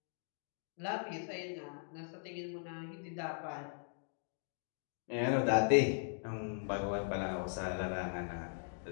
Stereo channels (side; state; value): right; silent; digital silence